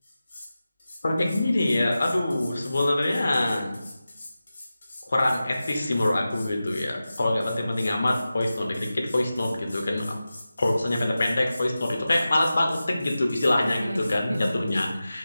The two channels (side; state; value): both; inverted; correlation -0.94